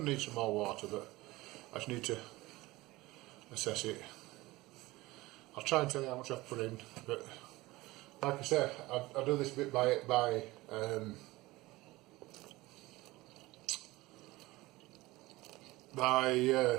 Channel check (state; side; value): quieter; left; 19.9 dB